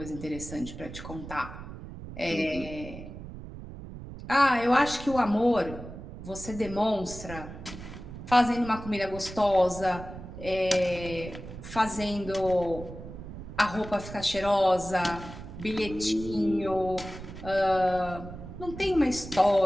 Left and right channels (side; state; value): right; noise; rumble, 12 dB below the sound